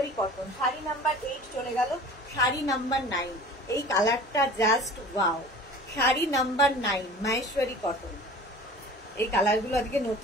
কটন। শাড়ি নাম্বার 8 চলে গেল। শাড়ি নাম্বার 9, এই কালারটা just wow. Sari number 9 Maheshwari cotton. এই কালারগুলো আজকে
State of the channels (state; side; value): normal; both; correlation 0.42